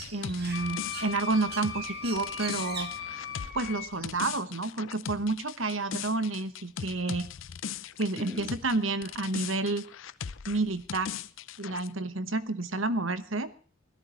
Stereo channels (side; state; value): both; normal; correlation 0.31